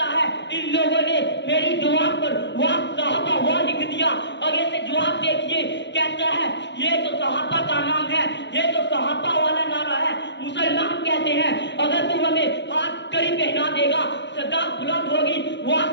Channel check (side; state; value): right; late; 0.52 ms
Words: ہے ان لوگوں نے میری دیوار پر وہ صحابہ وہ لکھ دیا. آگے سے جواب دیکھیے، کہتا ہے یہ تو صحابہ کا نام ہے، یہ تو صحابہ والا نعرہ ہے. مسلمان کہتے ہیں اگر تم ہمیں ہاتھ کڑی پہنا دے گا صدا بلند ہوگی وہ